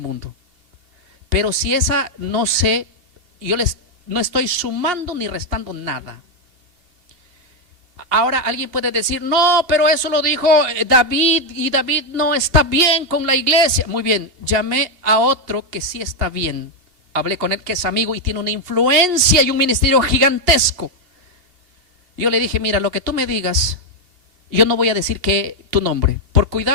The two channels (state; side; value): late; left; 2.7 ms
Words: Pero si esa no sé, no estoy sumando ni restando nada. Ahora alguien puede decir, no, pero eso lo dijo David y David no está bien con la iglesia. Muy bien, llamé a otro que sí está bien. Hablé con él, que es amigo y tiene una influencia y un ministerio gigantesco. Yo le dije, mira, lo que tú me digas, yo no voy a decir que tu nombre, por